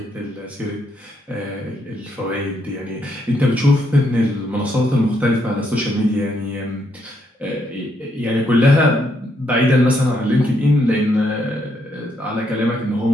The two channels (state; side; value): normal; both; correlation 0.75